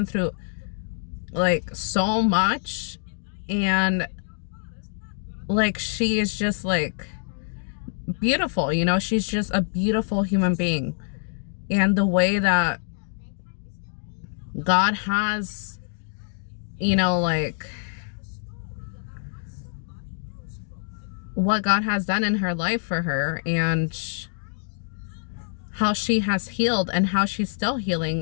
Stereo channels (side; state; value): right; silent; digital silence